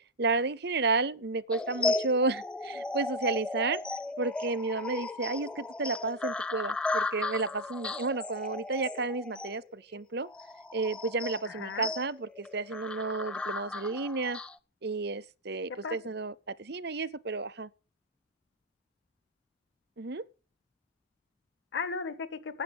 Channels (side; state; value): both; normal; correlation 0.02